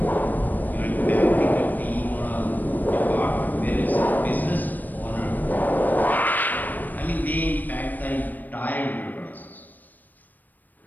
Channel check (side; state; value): right; late; 0.086 ms